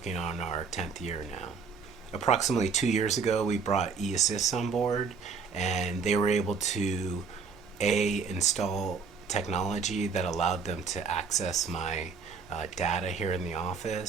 on our 10th year now. Approximately 2 years ago, we brought eAssist on board, and they were able to install technology that allowed them to access my data here in the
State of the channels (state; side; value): quieter; left; 5.4 dB